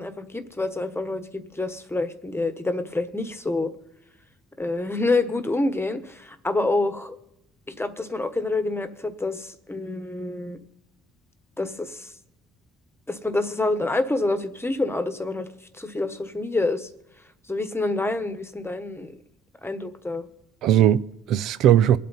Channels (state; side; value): normal; both; correlation 0.67